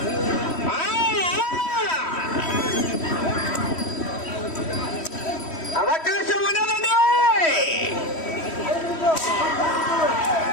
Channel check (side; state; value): right; late; 3.1 ms